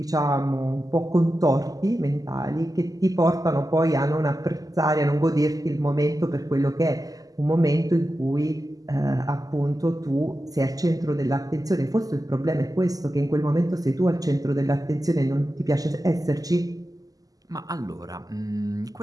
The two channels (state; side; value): late; left; 0.17 ms